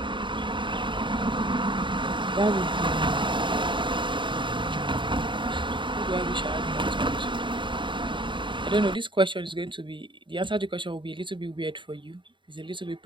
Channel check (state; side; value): late; left; 0.23 ms